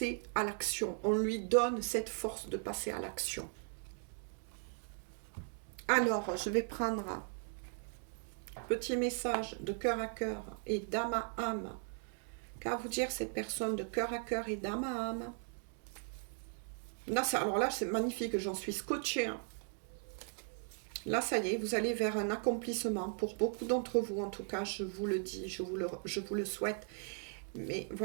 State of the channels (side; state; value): left; silent; 52 dB below the other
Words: à l'action. On lui donne cette force de passer à l'action. Alors, je vais prendre un petit message de cœur à cœur et d'âme à âme. Qu'à vous dire cette personne de cœur à cœur et d'âme à âme? Là, alors là, c'est magnifique, j'en suis scotchée. Là, ça y est, vous allez vers un accomplissement. Pour beaucoup d'entre vous, en tout cas, je vous le dis, je vous le souhaite. Mais